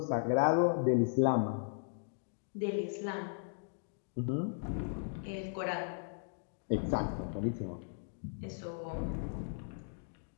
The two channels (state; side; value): silent; right; digital silence